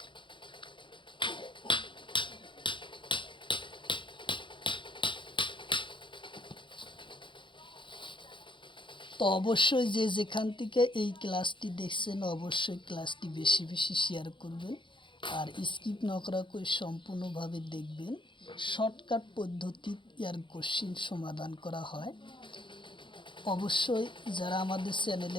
তো অবশ্যই যে যেখান থেকে এই ক্লাসটি দেখছেন অবশ্যই ক্লাসটি বেশি বেশি শেয়ার করবেন, আর স্কিপ না করা করে সম্পূর্ণভাবে দেখবেন। শর্টকাট পদ্ধতি এর কোশ্চিন সমাধান করা হয়। অবশ্যই যারা আমাদের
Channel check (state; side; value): late; right; 0.23 ms